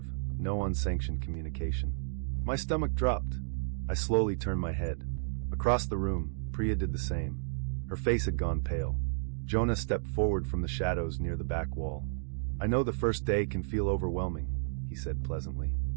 no unsanctioned communication. My stomach dropped. I slowly turned my head. Across the room, Priya did the same. Her face had gone pale. Jonah stepped forward from the shadows near the back wall. I know the first day can feel overwhelming, he said pleasantly.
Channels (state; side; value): silent; left; digital silence